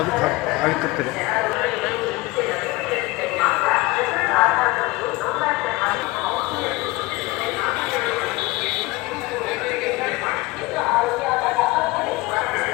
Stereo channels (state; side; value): quieter; right; 21.6 dB